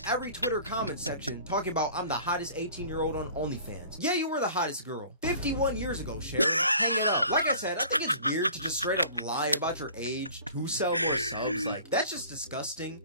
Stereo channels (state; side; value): inverted; both; correlation -0.47